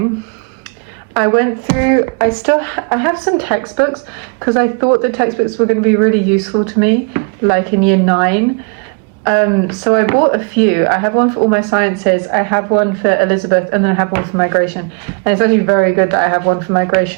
I went through, I have some textbooks because I thought the textbooks were going to be really useful to me, like in year 9. So I bought a few. I have one for all my sciences, I have one for Elizabeth, and then I have one for migration. And it's actually very good that I have one for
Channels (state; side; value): quieter; left; 35.6 dB